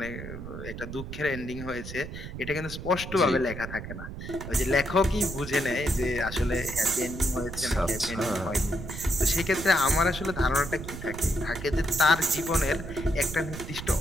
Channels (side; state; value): right; noise; rumble, 9 dB below the sound